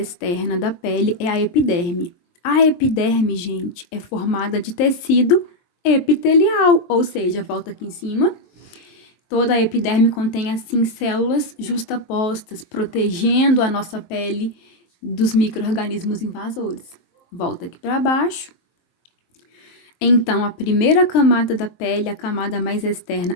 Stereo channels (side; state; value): right; late; 23 ms